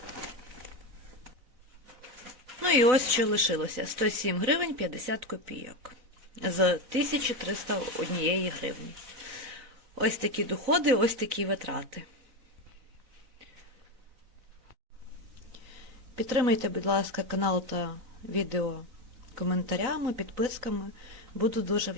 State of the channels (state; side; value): late; left; 4.0 ms